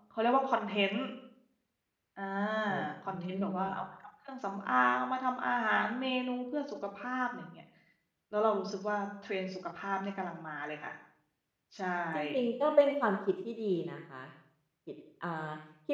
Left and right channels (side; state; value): both; identical; correlation 1.00